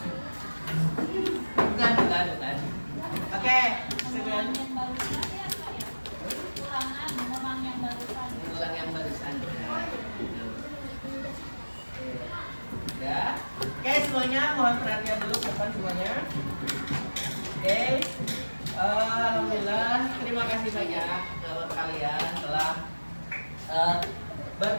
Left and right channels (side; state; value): both; inverted; correlation -1.00